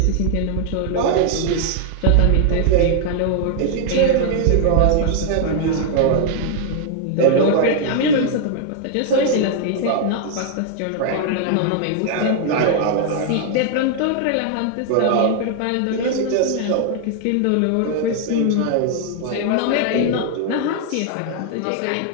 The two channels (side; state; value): both; different; correlation 0.00